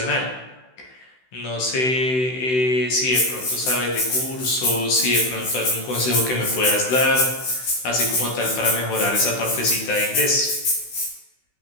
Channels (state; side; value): late; right; 16 ms